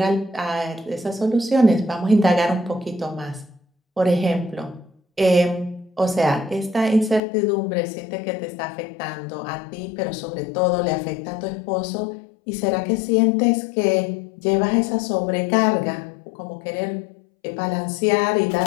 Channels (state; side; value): drops out; right; at 7.2 s